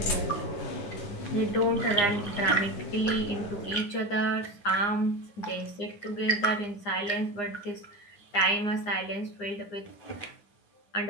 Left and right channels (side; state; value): right; late; 9.8 ms